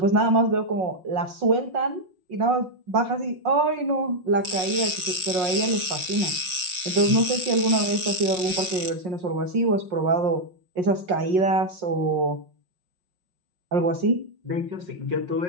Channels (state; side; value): late; left; 5.5 ms